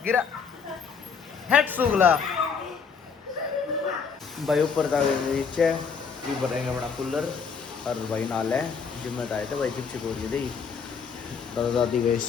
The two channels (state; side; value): quieter; right; 6.0 dB